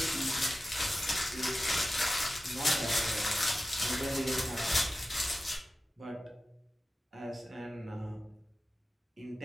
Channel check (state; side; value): normal; both; correlation 0.94